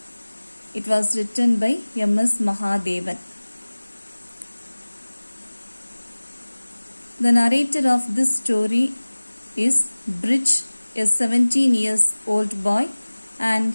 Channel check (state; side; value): inverted; both; correlation -1.00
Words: It was written by M.S. Mahadevan. The narrator of this story is Bridge, a 17 years old boy, and